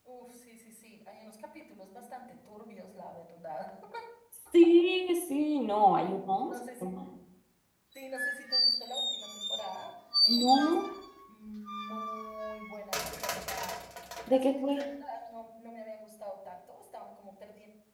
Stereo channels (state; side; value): identical; both; correlation 1.00